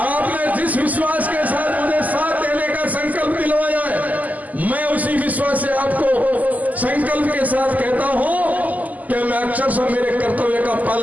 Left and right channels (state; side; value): late; left; 0.079 ms